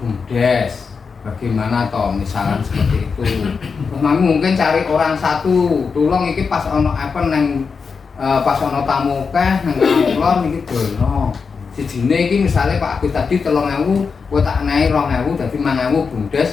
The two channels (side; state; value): right; quieter; 5.3 dB